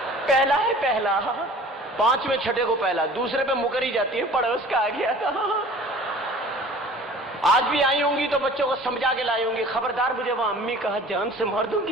पहला है पहला, 5वें छठे को पहला, दूसरे पे मुकरी जाती है, पड़ोस का आ गया था। आज भी आई होंगी तो बच्चों को समझा के लाई होंगी, खबरदार मुझे वहां अम्मी कहा जान से मार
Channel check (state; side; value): normal; both; correlation 0.45